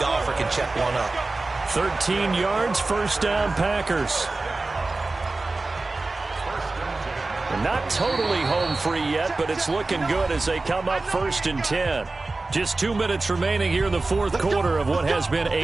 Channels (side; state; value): left; quieter; 3.4 dB